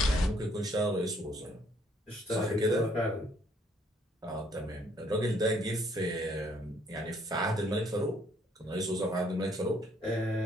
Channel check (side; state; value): both; normal; correlation 0.66